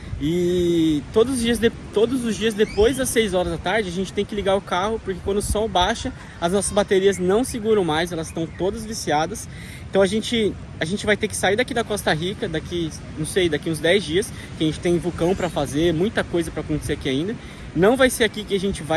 E todos os dias depois das 6 horas da tarde a gente tem que ligar o carro, porque quando o sol baixa as nossas baterias não seguram mais, elas estão todas viciadas. Então a gente vai ter que sair daqui da Costa Rica daqui uns 10 dias, que a gente tem vulcão para fazer, muita coisa para acontecer aqui ainda. Não vai ser aqui que a gente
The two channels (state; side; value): identical; both; correlation 1.00